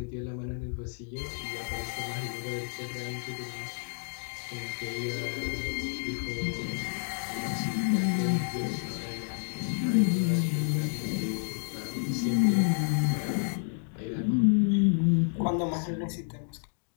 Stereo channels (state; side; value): silent; right; digital silence